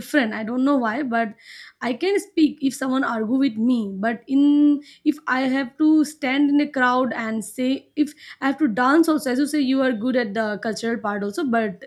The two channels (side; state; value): both; identical; correlation 1.00